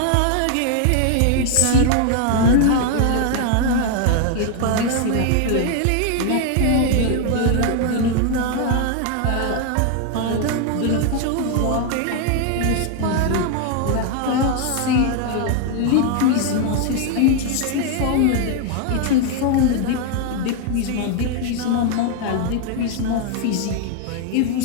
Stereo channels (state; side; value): different; both; correlation 0.00